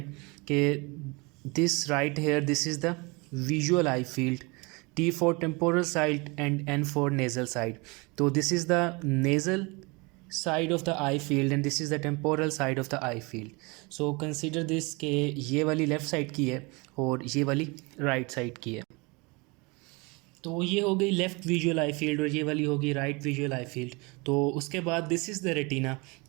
कि this right here this is the visual eye field, T for temporal side and N for nasal side. तो this is the nasal side of the eye field and this is the temporal side of the eye field. So consider this कि ये वाली left side की है और ये वाली right side की है। तो ये हो गई लेफ़्ट विजुअल आई फील्ड और ये वाली होगी राइट विजुअल आई फील्ड। तो उसके बाद दिस इज़ द रेटिना।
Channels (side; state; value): left; quieter; 27.3 dB